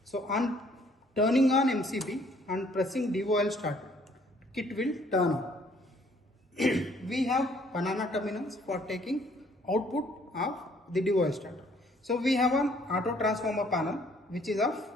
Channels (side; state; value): both; normal; correlation 0.62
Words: So on turning on MCB and pressing DOL starter, kit will turn on. We have banana terminals for taking output of the DOL starter. So we have an auto transformer panel which is of